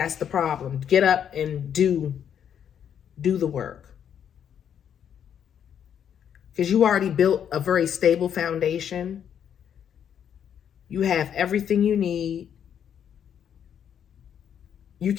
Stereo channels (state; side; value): quieter; right; 8.8 dB